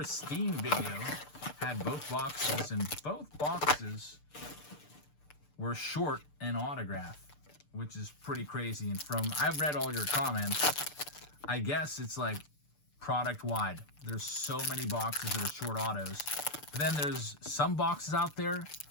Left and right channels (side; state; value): right; late; 6.8 ms